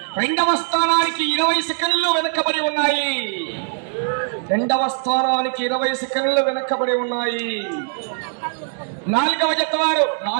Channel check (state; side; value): silent; left; digital silence